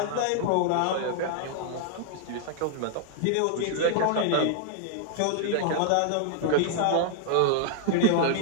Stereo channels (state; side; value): different; both; correlation -0.01